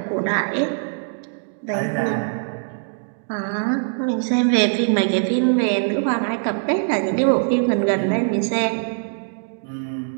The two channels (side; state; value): left; silent; digital silence